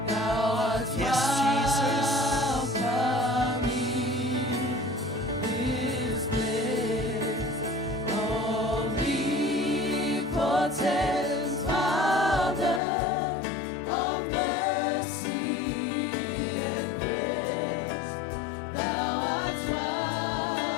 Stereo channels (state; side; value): drops out; right; at 12.8 s